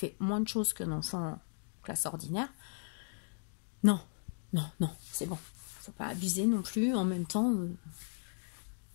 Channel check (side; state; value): right; silent; 54 dB below the other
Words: moins de choses qu'un enfant en classe ordinaire. Non, c'est bon. Il ne faut pas abuser non plus. En même temps,